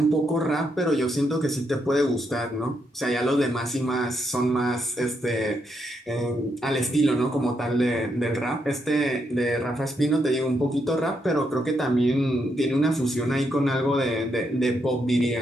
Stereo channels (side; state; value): both; normal; correlation 0.79